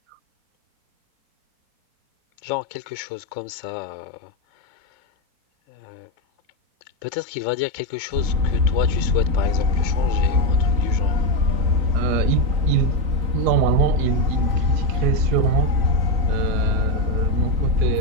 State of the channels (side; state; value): left; late; 3.9 ms